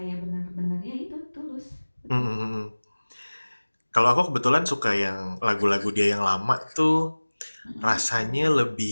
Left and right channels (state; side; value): inverted; both; correlation -1.00